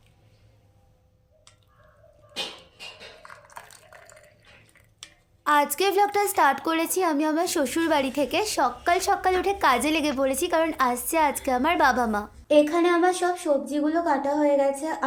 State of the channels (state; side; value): identical; both; correlation 1.00